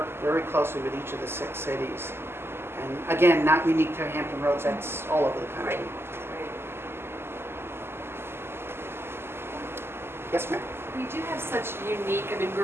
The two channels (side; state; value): left; late; 0.12 ms